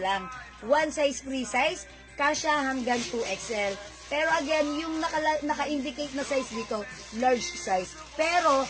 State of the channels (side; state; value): both; identical; correlation 1.00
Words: One size, free size, kasya hanggang 2XL. Pero again, yung naka-indicate na size dito, large size. Pero,